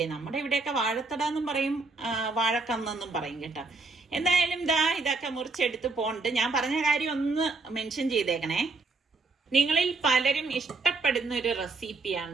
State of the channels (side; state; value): left; quieter; 3.8 dB